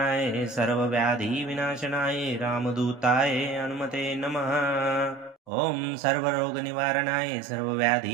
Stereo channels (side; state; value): left; drops out; at 5.4 s